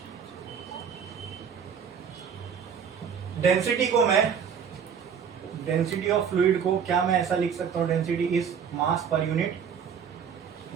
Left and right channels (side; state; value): left; quieter; 7.3 dB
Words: डेंसिटी को मैं, डेंसिटी ऑफ फ्लूइड को क्या मैं ऐसा लिख सकता हूँ? Density is mass per unit,